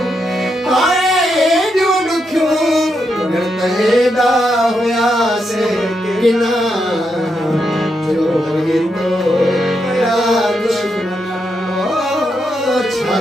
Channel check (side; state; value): both; normal; correlation 0.82